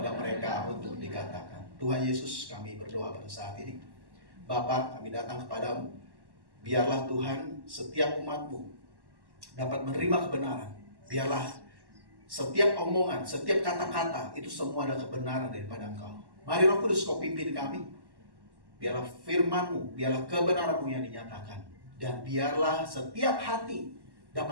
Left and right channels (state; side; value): late; left; 1.1 ms